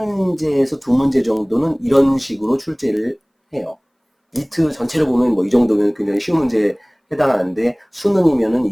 두 문제 정도는 이런 식으로 출제를 해요. 리트 전체를 보면 뭐 이 정도면 굉장히 쉬운 문제에 해당하는데, 수능이면은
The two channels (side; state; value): both; identical; correlation 1.00